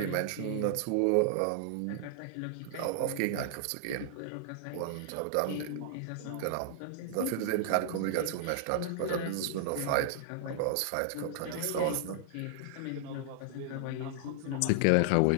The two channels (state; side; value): different; both; correlation -0.01